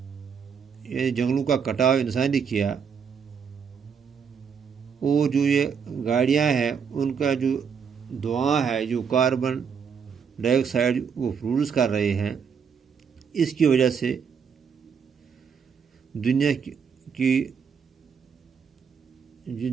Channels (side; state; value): left; quieter; 6.6 dB